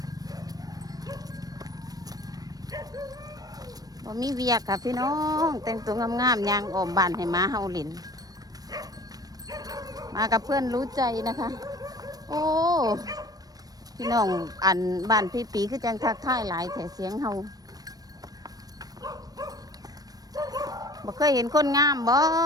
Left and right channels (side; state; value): left; late; 0.18 ms